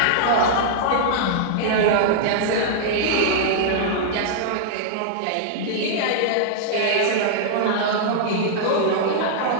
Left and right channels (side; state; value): both; different; correlation -0.01